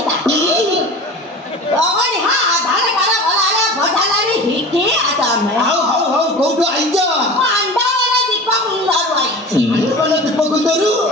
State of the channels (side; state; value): both; normal; correlation 0.35